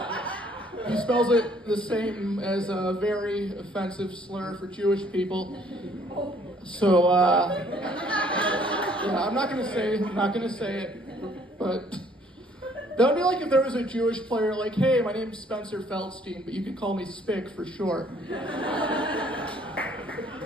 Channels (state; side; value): normal; both; correlation 0.62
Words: He spells it the same as a very offensive slur for Jewish people. So, yeah, I'm not gonna say it, but that would be like if there was a Jewish player like, hey, my name's Spencer Feldstein, but you can call me Spick for short.